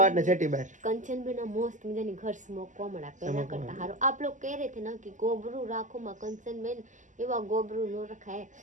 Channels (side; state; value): left; late; 0.37 ms